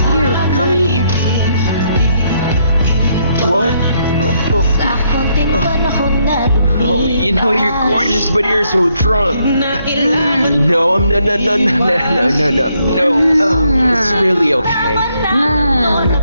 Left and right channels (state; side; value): inverted; both; correlation -0.74